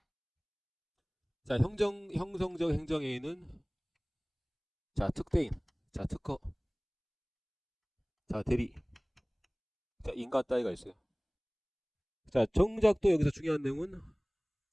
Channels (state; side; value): identical; both; correlation 1.00